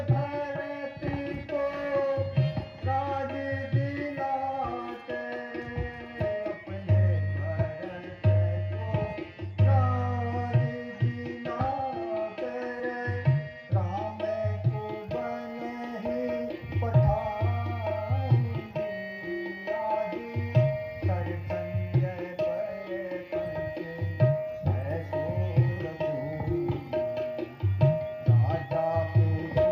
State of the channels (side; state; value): both; identical; correlation 1.00